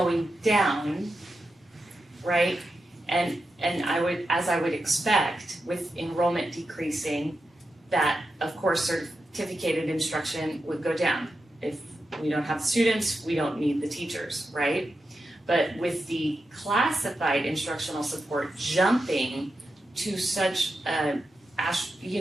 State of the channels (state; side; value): normal; both; correlation 0.89